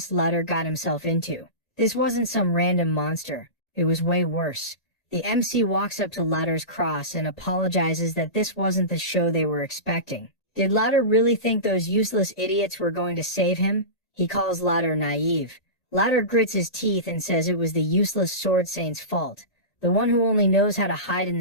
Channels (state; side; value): late; right; 1.9 ms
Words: Lutter got himself into. This wasn't some random monster, it was way worse. The MC walks up to Lutter's cross and apologizes that this wasn't the show they were expecting. Did Lutter really think those useless idiots were going to save him? He calls Lutter naive. Lutter grits his teeth and says it was the useless sword saint's fault, the one who only knows how to hide in